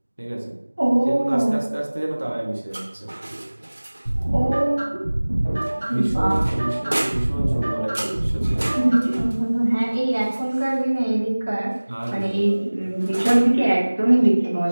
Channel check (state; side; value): inverted; both; correlation -1.00